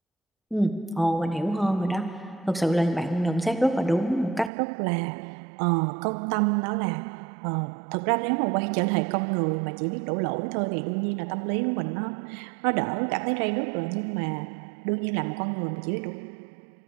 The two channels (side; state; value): left; drops out; at 4.5 s